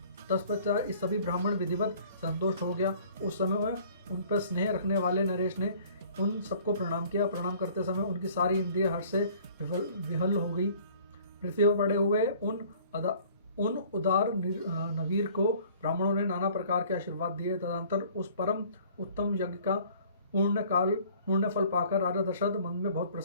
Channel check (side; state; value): both; inverted; correlation -0.53